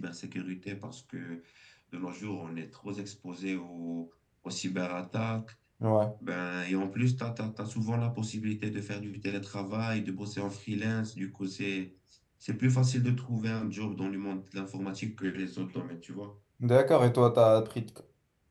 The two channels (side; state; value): both; identical; correlation 1.00